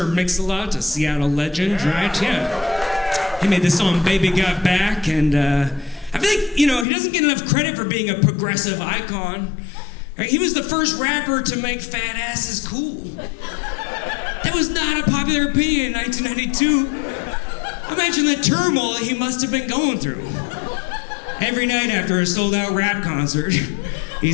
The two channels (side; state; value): right; drops out; at 6.9 s